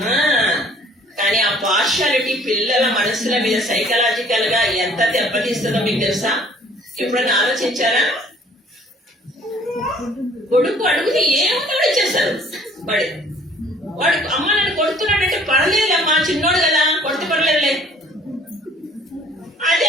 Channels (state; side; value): normal; both; correlation 0.56